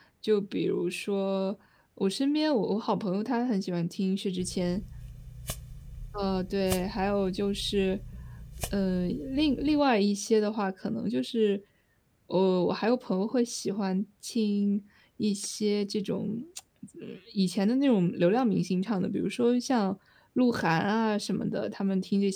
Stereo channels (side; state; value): both; identical; correlation 1.00